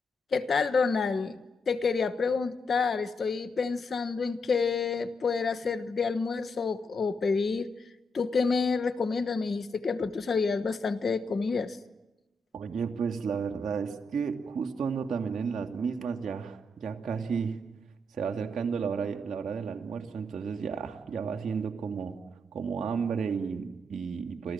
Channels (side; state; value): both; normal; correlation 0.81